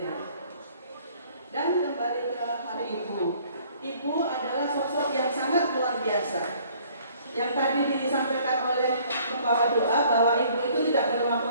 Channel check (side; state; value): both; inverted; correlation -0.58